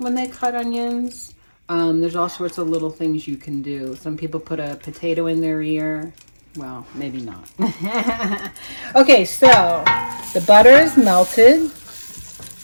they cut onions. There's all sorts of little things you can do. Some people put a potato in their ear. Well, maybe not. Okay, so the butter is melted.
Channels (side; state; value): both; inverted; correlation -1.00